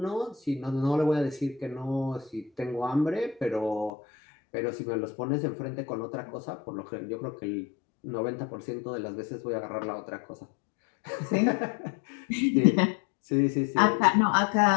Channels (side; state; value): right; drops out; at 3.9 s